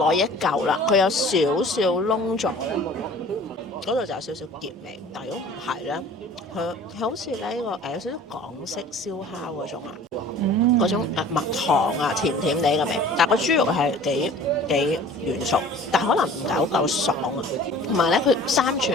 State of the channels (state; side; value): normal; both; correlation 0.46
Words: 一嚿啦，佢有少少燶咗咧，嗰度就有少少澀味。但係如果唔係咧，佢好似咧呢個有少少港式燒烤嗰種啊，嗰種蜜糖啊，甜甜地嘅味。但係個豬肉係幾軟熟，但係可能唔夠爽啊。同埋咧，佢3